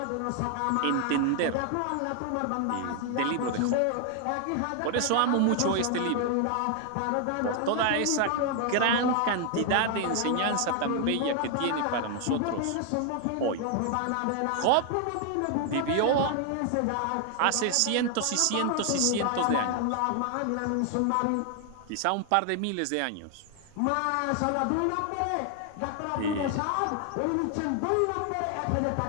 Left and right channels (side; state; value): both; different; correlation 0.00